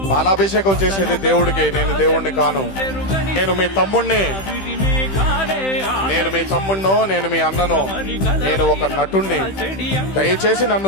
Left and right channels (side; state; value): right; late; 15 ms